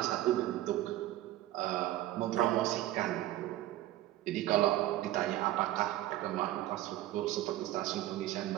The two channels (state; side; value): quieter; left; 14.8 dB